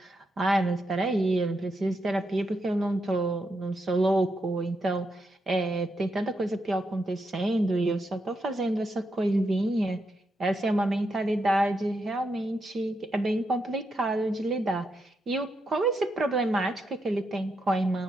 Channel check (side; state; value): both; normal; correlation 0.83